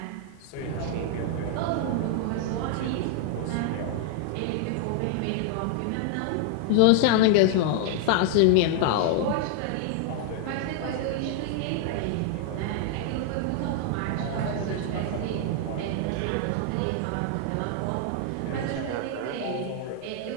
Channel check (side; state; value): both; different; correlation 0.00